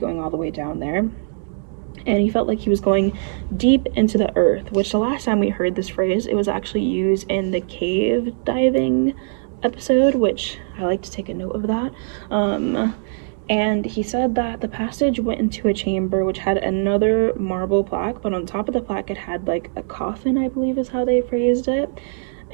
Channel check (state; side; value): silent; left; digital silence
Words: all the way down there. And he felt like he was going deep into the earth, which the last time we heard this phrase, it was actually used in the cave diving episode, which I like to take a note of that. And he said that the passage went into a chamber which had another marble plaque, but on top of the plaque it had like a coffin, I believe is how they phrased it,